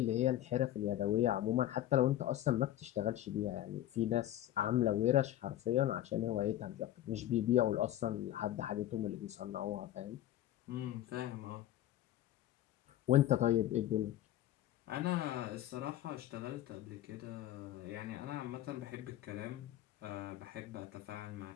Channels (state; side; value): quieter; right; 13.2 dB